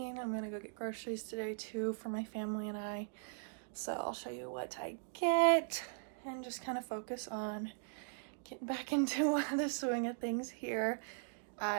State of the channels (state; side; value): silent; left; digital silence